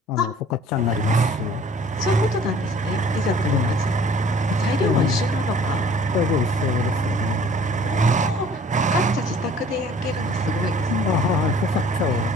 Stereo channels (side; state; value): both; normal; correlation 0.53